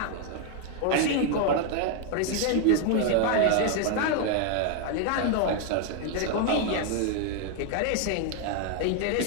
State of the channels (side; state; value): both; different; correlation 0.00